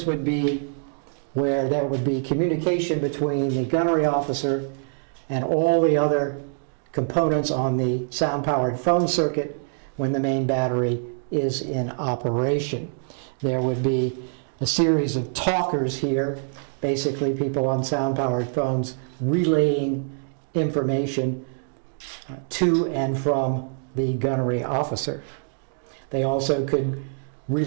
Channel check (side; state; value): left; silent; digital silence